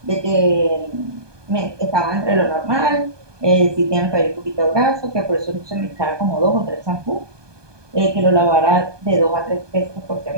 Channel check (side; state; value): left; late; 1.2 ms